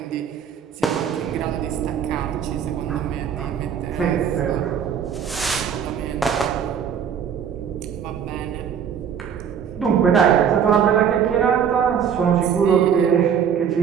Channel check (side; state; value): left; quieter; 7.9 dB